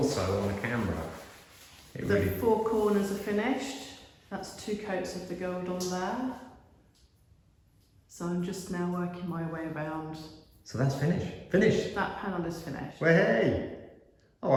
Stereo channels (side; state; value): both; identical; correlation 1.00